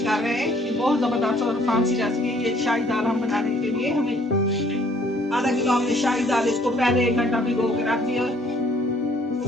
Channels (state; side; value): normal; both; correlation 0.61